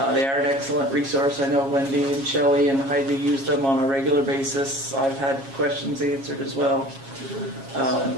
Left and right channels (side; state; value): left; late; 7.3 ms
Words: are an excellent resource. I know Wendy and Shelley and Heidi use them on a regular basis. I've had questions answered as well.